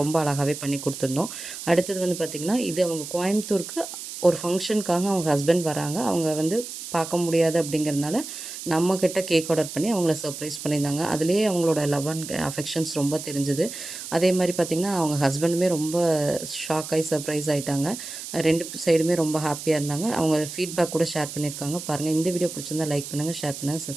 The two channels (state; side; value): noise; right; hiss, 10 dB below the sound